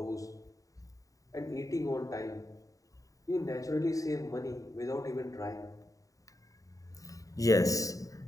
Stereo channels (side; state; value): right; late; 0.16 ms